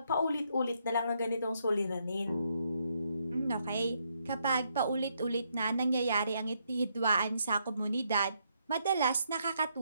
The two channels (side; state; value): both; inverted; correlation -0.76